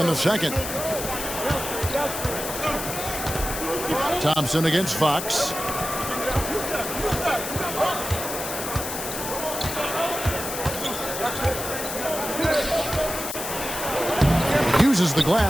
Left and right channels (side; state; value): left; noise; hiss, 6 dB below the sound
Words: the second. Thompson against Fox. Uses the